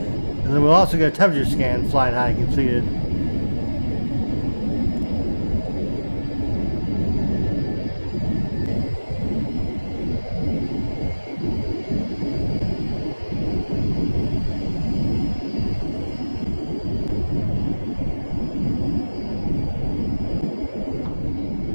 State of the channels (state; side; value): inverted; both; correlation -1.00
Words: then we'll also get a temperature scan flying high completed.